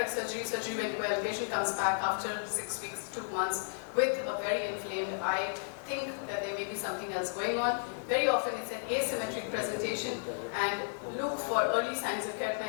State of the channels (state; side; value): silent; right; digital silence